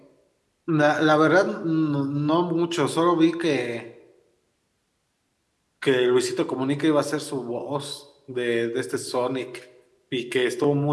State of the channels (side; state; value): both; identical; correlation 1.00